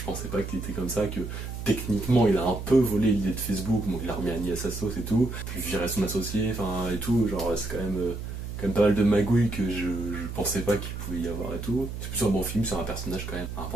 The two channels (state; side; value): noise; right; hum, 7 dB below the sound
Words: pensais pas qu'il était comme ça, que techniquement il a un peu volé l'idée de Facebook, donc il a remis Annie à sa sauce et tout, puis viré son associé, enfin et tout, genre c'est quand même pas mal de magouilles que je pensais pas qu'il pouvait y avoir et tout. C'est plutôt un bon film sur un personnage quand même